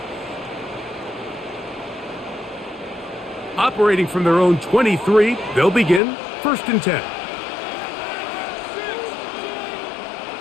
Operating from their own 23, they'll begin 1st and 10.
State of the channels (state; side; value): drops out; right; at 6.0 s